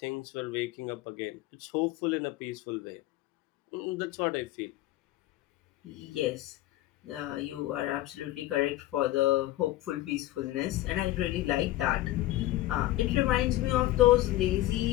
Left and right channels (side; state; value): right; quieter; 16.1 dB